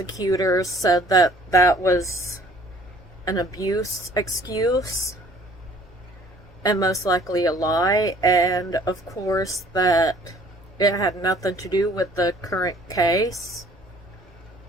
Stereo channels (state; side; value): normal; both; correlation 0.55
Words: said that that was an abuse excuse, and most likely a lie, and of course that it had nothing to do with the current case.